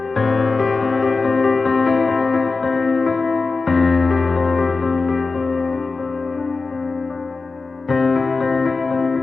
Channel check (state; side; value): quieter; right; 4.0 dB